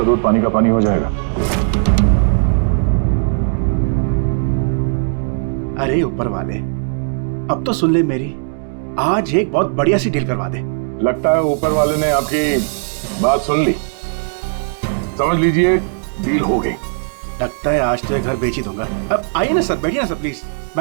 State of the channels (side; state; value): left; silent; 68 dB below the other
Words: दूध पानी का पानी हो जाएगा। अरे ऊपर वाले, अब तो सुन ले मेरी, आज एक बहुत बढ़िया सी डील करवा दे। लगता है ऊपर वाले ने आपकी बात सुन ली। समझ लीजिए डील हो गई। लगता है आज तो ये घर बेच ही दूंगा। अब आइए ना सर, बैठिए ना सर प्लीज।